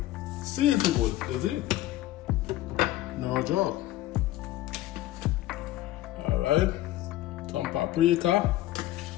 seasoned good. That's it. No joke. Alright. Some paprika.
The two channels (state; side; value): quieter; right; 15.2 dB